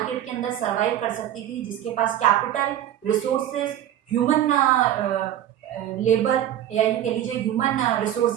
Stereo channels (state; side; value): quieter; left; 11.5 dB